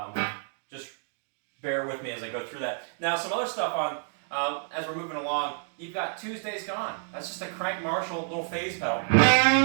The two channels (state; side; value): silent; left; 59 dB below the other